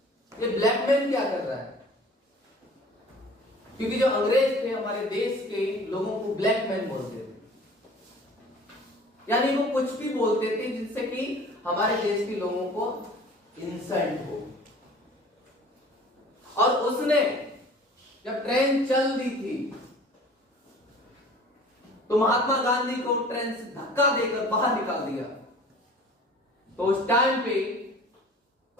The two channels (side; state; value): both; normal; correlation 0.46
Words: ये ब्लैक मैन क्या कर रहा है। क्योंकि जो अंग्रेज थे हमारे देश के लोगों को ब्लैक मैन बोलते थे, यानी वो कुछ भी बोलते थे जिससे कि हमारे देश के लोगों को इंसल्ट हो। और उसने जब ट्रेन चल दी थी तो महात्मा गांधी को ट्रेन से धक्का देकर बाहर निकाल दिया। तो उस टाइम पे